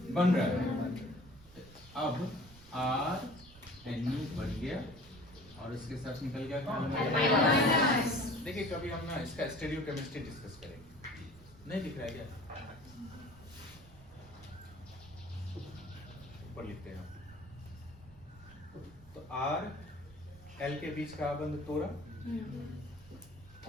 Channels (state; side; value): noise; right; rumble, 21 dB below the sound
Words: बन रहा है। अब RNU बन गया और इसके साथ निकल गया कौन? देखिए, कभी हम ना इसका स्टीरियोकेमिस्ट्री डिस्कस करेंगे। नहीं दिख रहा है क्या? ऊपर लिखते हैं। तो R L के बीच का आबंध तोड़ा